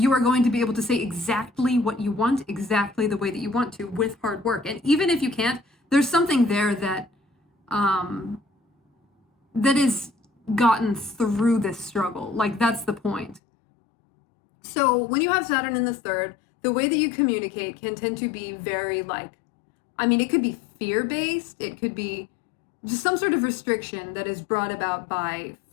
are going to be able to say exactly what you want, exactly the way that you want to, with hard work. And even if you can't, there's something there that that is gotten through this struggle. Like, that's the point. So when you have Saturn in the third, the way that you communicate can tend to be very like, I mean, it could be fear-based. It could be just some sort of restriction that is brought about by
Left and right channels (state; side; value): drops out; right; at 13.4 s